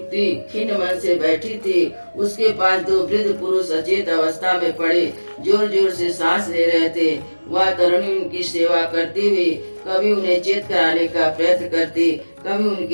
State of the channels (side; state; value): both; inverted; correlation -1.00